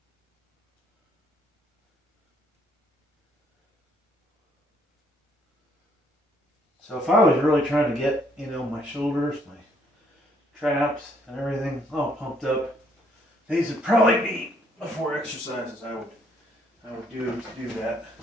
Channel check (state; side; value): normal; both; correlation 0.68